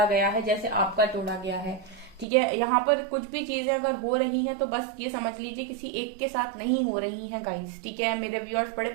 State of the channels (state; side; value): drops out; left; at 2.2 s